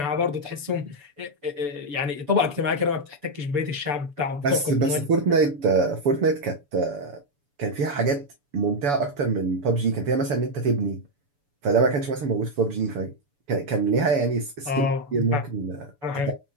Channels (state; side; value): late; left; 7.0 ms